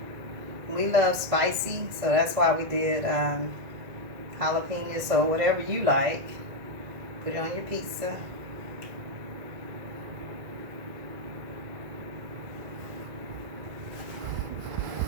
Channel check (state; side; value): late; left; 2.0 ms